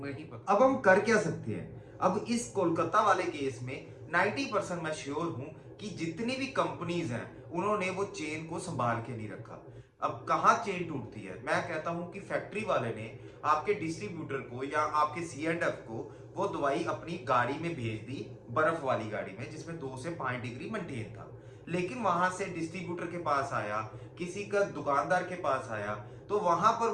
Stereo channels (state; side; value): identical; both; correlation 1.00